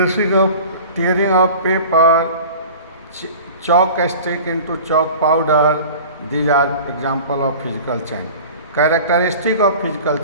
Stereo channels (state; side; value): inverted; both; correlation -0.40